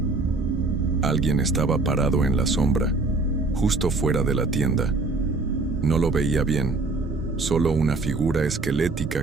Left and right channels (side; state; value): left; quieter; 3.4 dB